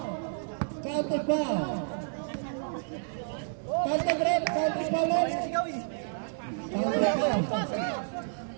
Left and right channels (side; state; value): left; silent; digital silence